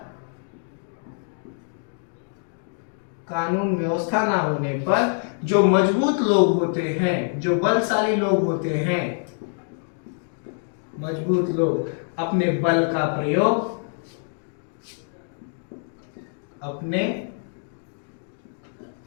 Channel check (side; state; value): right; silent; 56 dB below the other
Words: कानून व्यवस्था ना होने पर जो मजबूत लोग होते हैं, जो बलशाली लोग होते हैं, मजबूत लोग अपने बल का प्रयोग, अपने